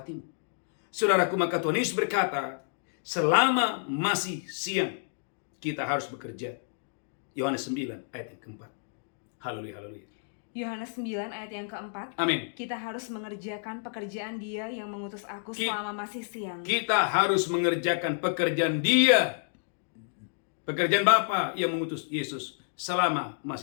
Saudaraku, maka Tuhan Yesus berkata, selama masih siang, kita harus bekerja. Yohanes 9 ayat yang keempat. Haleluya. Yohanes 9 ayat yang keempat. Amin. Kita harus mengerjakan pekerjaan Dia yang mengutus aku selama masih siang. Kita harus mengerjakan pekerjaan Dia. Pekerjaan Bapa yang mengutus Yesus selama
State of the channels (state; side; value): silent; right; digital silence